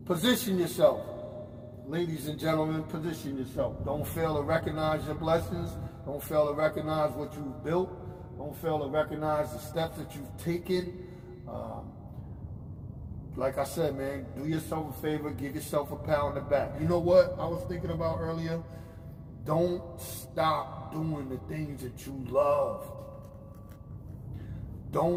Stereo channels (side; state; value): both; identical; correlation 1.00